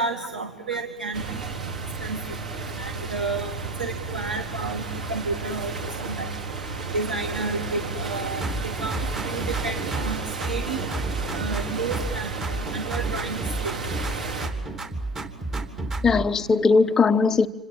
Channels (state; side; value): normal; both; correlation 0.44